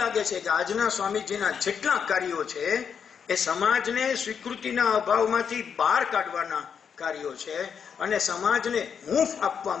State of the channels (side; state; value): right; quieter; 7.1 dB